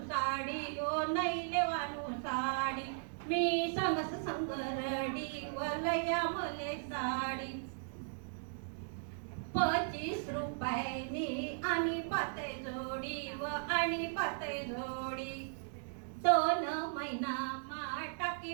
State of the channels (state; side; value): silent; left; digital silence